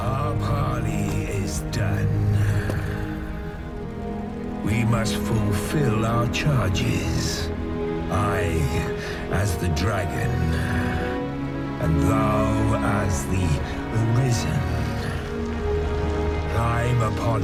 parley is done. We must fulfill our charges. I, as the dragon, and thou as the Arisen. Climb upon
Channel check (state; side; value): identical; both; correlation 1.00